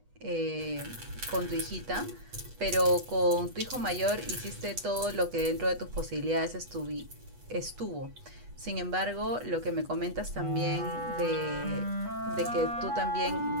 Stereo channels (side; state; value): left; late; 8.2 ms